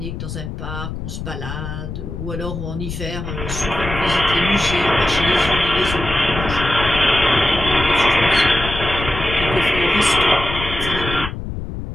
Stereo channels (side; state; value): left; noise; rumble, 7 dB below the sound